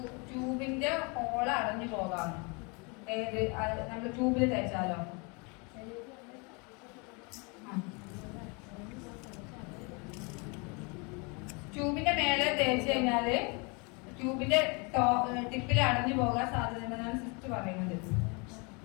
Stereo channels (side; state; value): right; quieter; 31.3 dB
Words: ട്യൂബിന്റെ ഹോള് അടഞ്ഞു പോകാണ്. ഏത് നമ്മൾ ട്യൂബിൽ തേച്ചാലോ? ട്യൂബിന്റെ മേലെ തേച്ച് കഴിഞ്ഞാല് ട്യൂബിന്റെ ടിപ്പിൽ അടഞ്ഞു പോകാൻ സാധ്യതയുണ്ടെന്നാണ് സിസ്റ്റർ പറയുന്നത്.